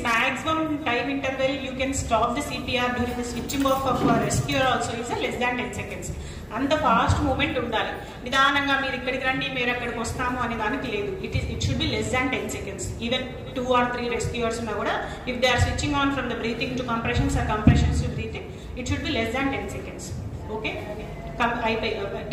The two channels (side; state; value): both; identical; correlation 1.00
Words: maximum time interval you can stop the CPR during the switching off of rescuer also is less than 10 seconds. అంత fast moment ఉండాలి. నిదానంగా మీరు ఇక్కడికి రండి మీరు అక్కడికి వస్తాము అనే దానికి లేదు. It should be less than 10 seconds. Even 2 or 3 rescuers ఉన్నా కూడా if they are switching on from the breathing to compressions or compressions to breathing, it should be less than 10 seconds. Okay,